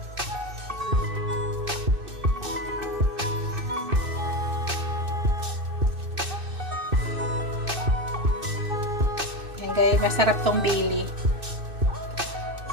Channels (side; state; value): left; late; 2.6 ms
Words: Guys, masarap tong bili.